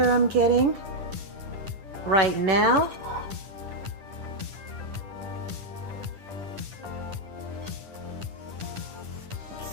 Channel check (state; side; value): late; left; 10 ms